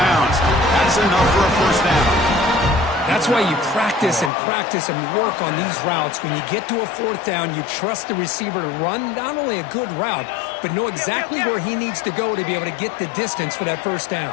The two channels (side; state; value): right; drops out; at 4.3 s